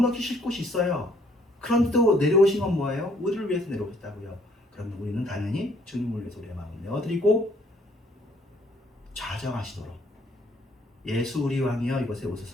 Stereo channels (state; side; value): normal; both; correlation 0.64